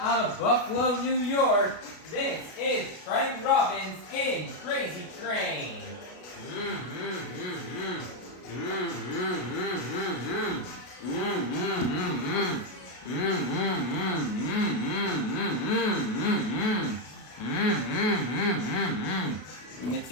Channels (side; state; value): right; late; 33 ms